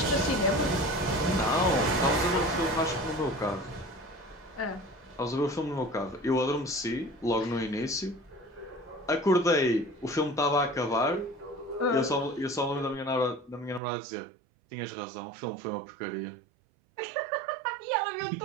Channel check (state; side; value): drops out; left; at 13.8 s